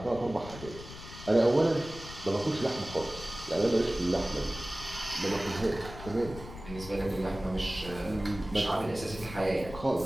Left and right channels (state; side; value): noise; left; rumble, 13 dB below the sound